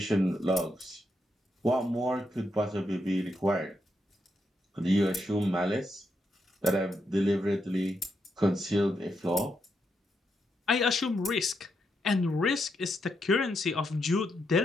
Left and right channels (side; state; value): both; normal; correlation 0.81